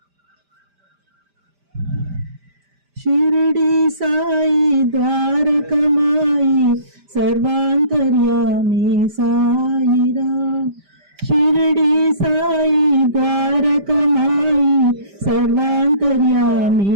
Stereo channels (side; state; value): left; late; 5.1 ms